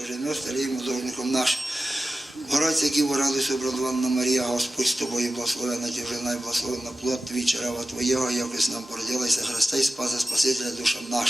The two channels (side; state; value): both; normal; correlation 0.94